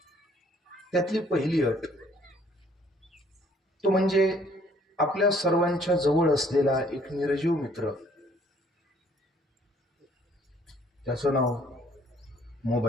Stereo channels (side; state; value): both; normal; correlation 0.61